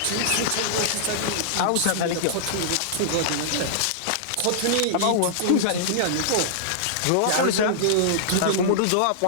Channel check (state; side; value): different; both; correlation -0.02